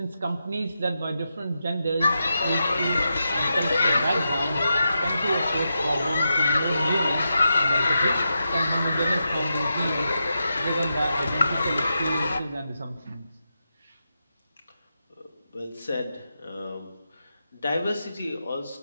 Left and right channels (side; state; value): both; inverted; correlation -0.87